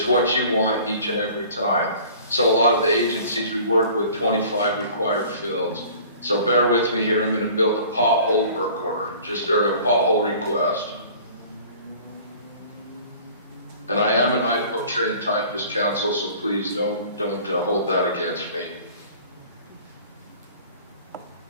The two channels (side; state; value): both; inverted; correlation -0.47